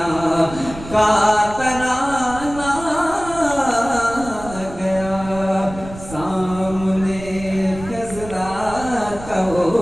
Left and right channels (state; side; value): noise; right; rumble, 14 dB below the sound